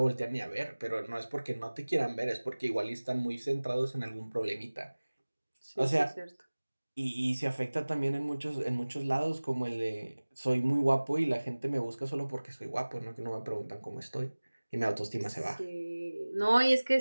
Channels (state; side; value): inverted; both; correlation -1.00